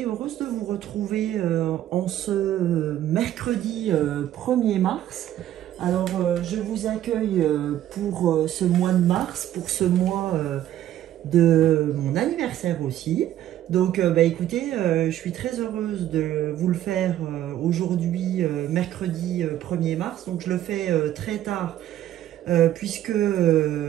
heureuse de vous retrouver en ce mercredi 1er mars. Alors je vous accueille pour ce mois de mars, pour ce mois de mon anniversaire aussi. Donc bah écoutez, je suis très heureuse de vous le faire aujourd'hui, mercredi 1er mars. Donc je le fais très tard puisque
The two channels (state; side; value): quieter; left; 12.4 dB